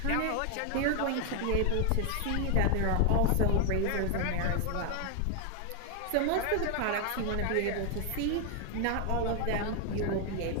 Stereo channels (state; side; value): different; both; correlation 0.01